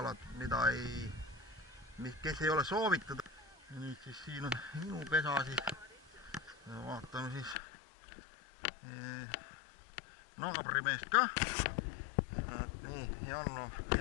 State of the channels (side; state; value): right; drops out; at 7.6 s